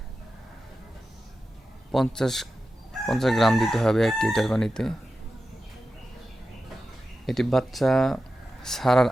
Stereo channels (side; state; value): both; normal; correlation 0.92